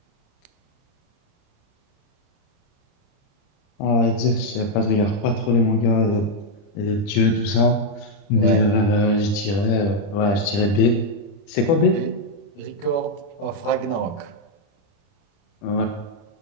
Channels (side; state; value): right; late; 30 ms